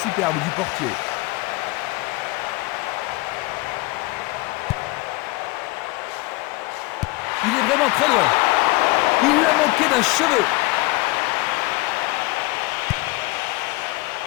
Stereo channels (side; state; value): right; quieter; 21.5 dB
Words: superbe du portier. Il est vraiment très loin. Il l'a manqué d'un cheveu.